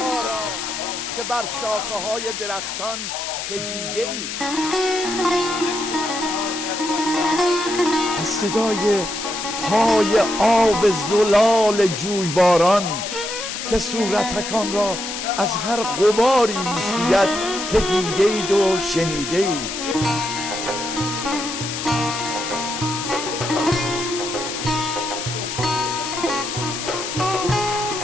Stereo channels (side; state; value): left; noise; hiss, 6 dB below the sound